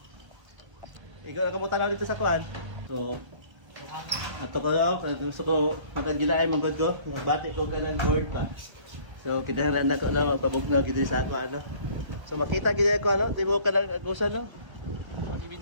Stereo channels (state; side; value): late; left; 1.2 ms